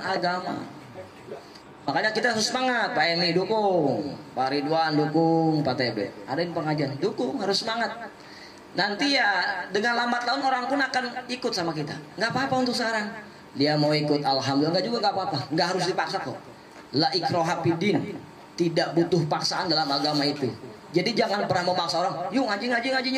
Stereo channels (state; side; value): identical; both; correlation 1.00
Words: agama. Makanya kita harus semangat. Pak Emi dukung, Pak Ridwan dukung, Pak TB. Ada yang pengajian dukung, harus semangat. Nanti ya dengan lambat laun orang pun akan ikut sama kita. Nggak apa-apa untuk sekarang. Dia mau ikut alhamdulillah, nggak juga nggak apa-apa. Nggak harus dipaksa kok. La ikraha fiddin, tidak butuh paksaan dalam agama itu. Jadi jangan pernah memaksa orang. Yuk ngaji